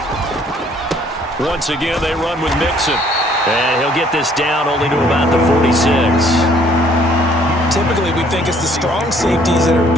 Once again, they run with Mixon. And he'll get this down only to about the 46. Typically, we think it's the strong safeties that are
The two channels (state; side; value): normal; both; correlation 0.61